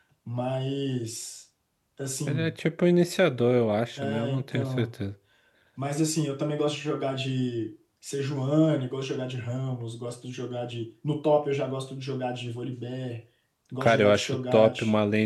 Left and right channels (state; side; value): identical; both; correlation 1.00